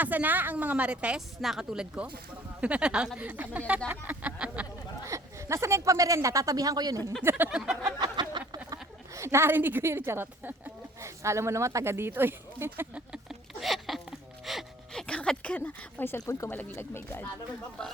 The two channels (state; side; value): normal; both; correlation 0.53